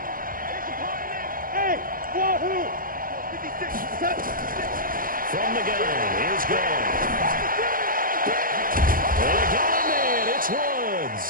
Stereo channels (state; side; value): late; left; 0.41 ms